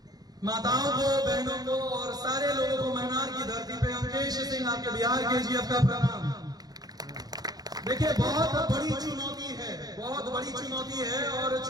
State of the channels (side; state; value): left; late; 0.19 ms